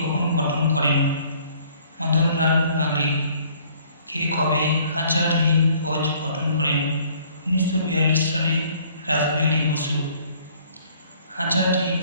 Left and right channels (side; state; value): both; inverted; correlation -0.58